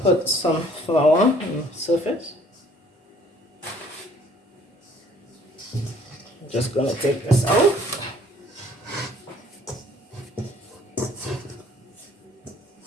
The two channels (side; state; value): both; normal; correlation 0.58